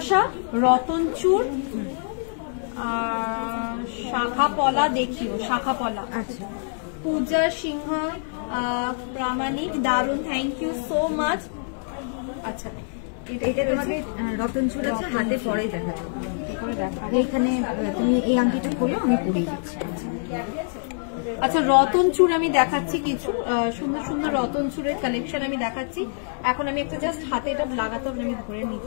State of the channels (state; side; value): silent; right; digital silence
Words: রতনচুর, শাখা পলা দেখিও, শাখা পলা। আচ্ছা, পূজা সিংহ প্রামাণিক, দারুন, থ্যাংক ইউ সো মাচ। আচ্ছা, এটা তোমাকে রতনচুর আছে, হাতে পরে দেখাবো। এইখানে তুমি এই আংটিটা খোলো, আমি পরিয়ে দিচ্ছি। আচ্ছা, রতনচুর আমি দেখাচ্ছি কিছু সুন্দর সুন্দর রতনচুরের কালেকশন আমি দেখাচ্ছি। এখন আমি একটা জাস্ট হাতে এটা লাগাতে হবে, আমি ধরে